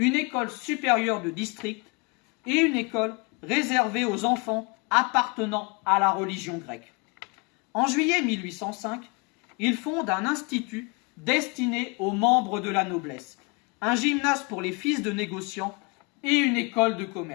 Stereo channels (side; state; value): right; quieter; 30.5 dB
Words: école supérieure de district et une école réservée aux enfants appartenant à la religion grecque. En juillet 1805, il fonde un institut destiné aux membres de la noblesse, un gymnase pour les fils de négociants et une école de